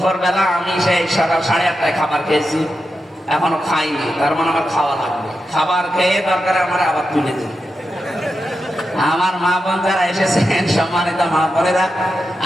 বেলা আমি সেই সকাল 8:30টায় খাবার খেয়েছি, এখনো খাইনি, তার মানে আমার খাওয়া লাগবে। খাবার খেয়ে দরকার আমার আবার তুলে দিন। আমার মা বোন যারা এসেছেন, সম্মানিত মা বোনেরা,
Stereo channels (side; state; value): both; normal; correlation 0.88